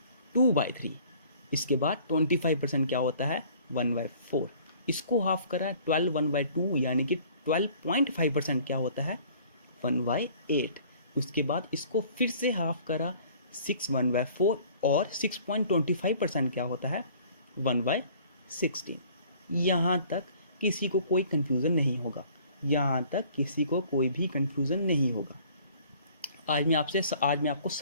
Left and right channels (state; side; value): inverted; both; correlation -0.53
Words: 2/3। इसके बाद 25% क्या होता है 1/4। इसको हाफ करा 12 1/2 यानी कि 12.5% क्या होता है 1/8। उसके बाद इसको फिर से हाफ करा 6 1/4 और 6.25% क्या होता है 1/16। यहाँ तक किसी को कोई कन्फ्यूज़न नहीं होगा। यहाँ तक किसी को कोई भी कन्फ्यूज़न नहीं होगा। आज मैं आपको